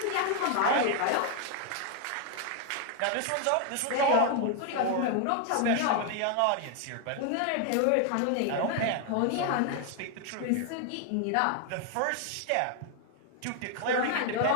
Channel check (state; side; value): different; both; correlation 0.00